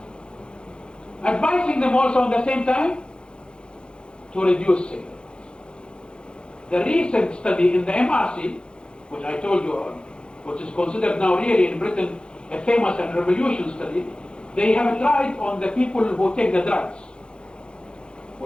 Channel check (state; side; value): late; right; 0.052 ms